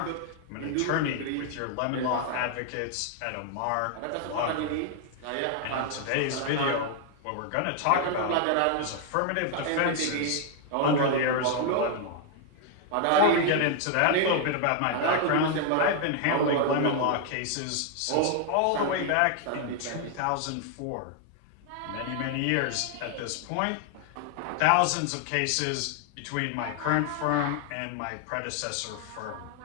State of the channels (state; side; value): different; both; correlation 0.00